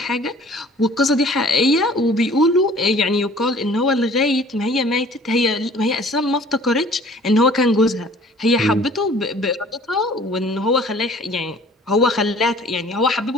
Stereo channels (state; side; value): normal; both; correlation 0.51